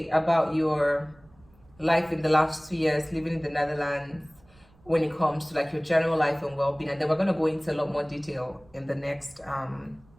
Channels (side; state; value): right; noise; rumble, 29 dB below the sound